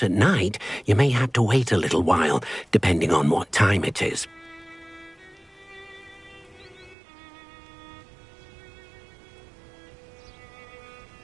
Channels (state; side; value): drops out; left; at 7.0 s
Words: at night, you may have to wait a little while, depending on what time it is.